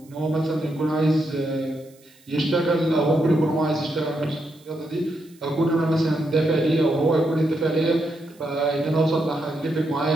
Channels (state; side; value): noise; right; hiss, 29 dB below the sound